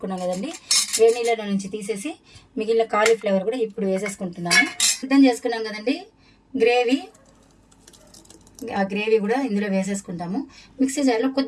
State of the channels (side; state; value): both; identical; correlation 1.00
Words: కదండి. వేడి నీళ్ళలో నుంచి తీసేసి మిగిలిన కాలీఫ్లవర్ కూడా ఇప్పుడు వేసేసుకుంటున్నాము. సిద్ధం చేసుకున్నాం కదండి గ్రేవీ, ఆ గ్రేవీ కూడా ఇందులో వేసేసుకుంటాము. మిక్సీ జార్లో